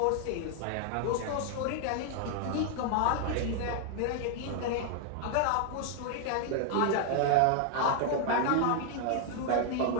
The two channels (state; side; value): different; both; correlation 0.00